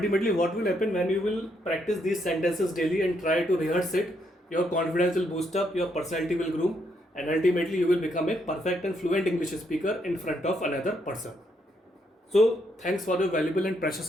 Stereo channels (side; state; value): both; normal; correlation 0.75